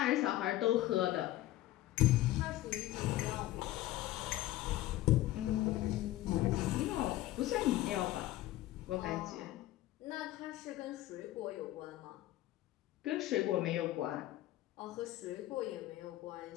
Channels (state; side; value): quieter; right; 15.4 dB